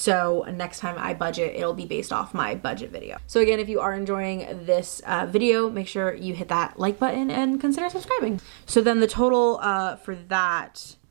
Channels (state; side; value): silent; left; digital silence